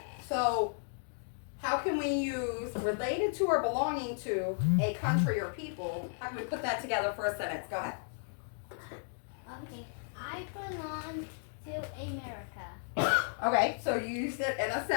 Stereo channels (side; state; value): right; silent; digital silence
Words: So, how can we use related to or belonging to a country or people? How can we put that together for a sentence? Go ahead. Okay. I belong to America. Okay, so you used it in a